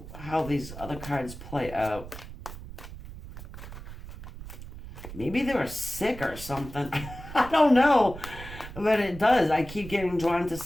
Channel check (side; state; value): right; noise; rumble, 13 dB below the sound